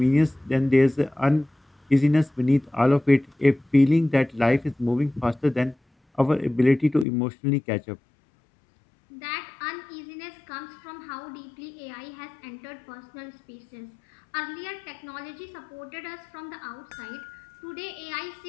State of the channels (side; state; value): right; drops out; at 7.1 s